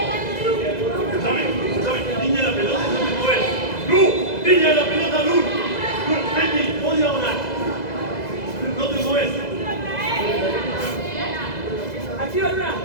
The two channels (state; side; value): late; right; 2.0 ms